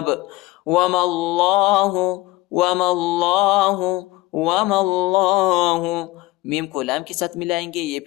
وَمَا اللَّهُ میم کو لام کے ساتھ ملائیں گے، یہ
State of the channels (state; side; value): quieter; right; 18.5 dB